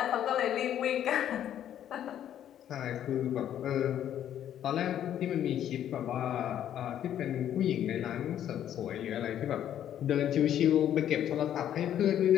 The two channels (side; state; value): right; quieter; 10.6 dB